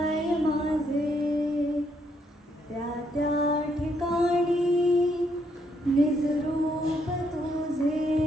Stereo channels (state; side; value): normal; both; correlation 0.74